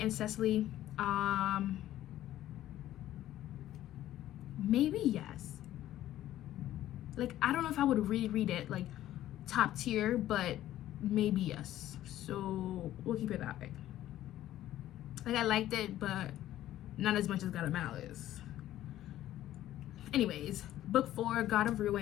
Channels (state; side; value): quieter; right; 13.4 dB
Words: and Cecily, maybe yes. Like, I don't know if I would reread it like top tier, but maybe yes. So we'll keep it that way. Like, I liked it, but not as much as God of Malice. Anyways, book 4, God of